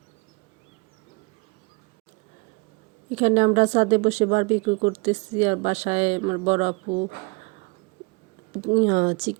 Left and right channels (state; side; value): quieter; left; 28.5 dB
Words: এখানে আমরা ছাদে বসে বারবিকিউ করতেছি, আর বাসায় আমার বড়